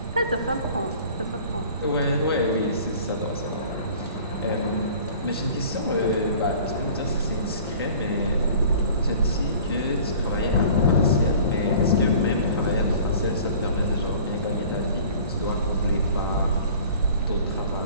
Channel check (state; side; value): inverted; both; correlation -0.47